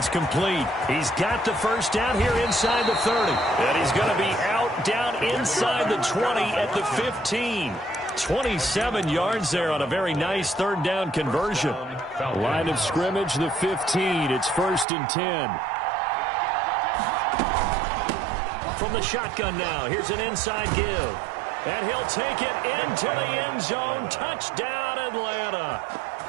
complete. He's got the 1st down here inside the 30. And he's going to be out down inside the 20 at the 15. 27 yards there on a very nice third down conversion. Line of scrimmage, the 15. It's 1st and 10. From the shotgun now, here's an inside give. And he'll take it into the end zone. Touchdown, Atlanta.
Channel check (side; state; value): left; drops out; at 14.9 s